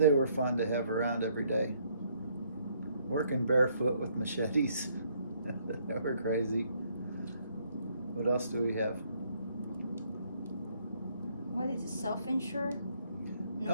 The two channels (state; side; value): inverted; both; correlation -0.68